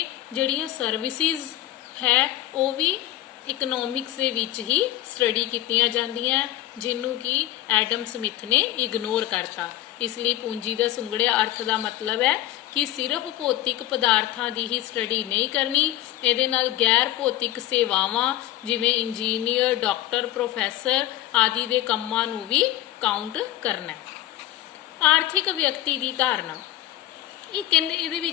ਜਿਹੜੀਆਂ ਸਰਵਿਸਿਜ਼ ਹੈ ਉਹ ਵੀ ਇਕਨੋਮਿਕਸ ਦੇ ਵਿੱਚ ਹੀ ਸਟੱਡੀ ਕੀਤੀਆਂ ਜਾਂਦੀਆਂ, ਜਿਹਨੂੰ ਕਿ ਐਡਮ ਸਮਿਥ ਨੇ ਇਗਨੋਰ ਕਰਤਾ। ਇਸ ਲਈ ਪੂੰਜੀ ਦਾ ਸੁੰਗੜਿਆ ਅਰਥ ਦਾ ਮਤਲਬ ਹੈ ਕਿ ਸਿਰਫ ਭੌਤਿਕ ਪਦਾਰਥਾਂ ਦੀ ਹੀ ਸਟੱਡੀ ਨਹੀਂ ਕਰਨੀ, ਇਹਦੇ ਨਾਲ ਗੈਰ ਭੌਤਿਕ ਸੇਵਾਵਾਂ ਜਿਵੇਂ ਇੰਜੀਨੀਅਰ, ਡਾਕਟਰ, ਪ੍ਰੋਫੈਸਰ ਆਦਿ ਦੇ ਕੰਮਾਂ ਨੂੰ ਵੀ ਕਾਊਂਟ ਕਰਨਾ ਹੈ। ਆਰਥਿਕ ਵਿਅਕਤੀ ਦੀ ਧਾਰਨਾ, ਇਹ ਕਹਿੰਦੇ ਇਹਦੇ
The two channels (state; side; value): quieter; right; 14.3 dB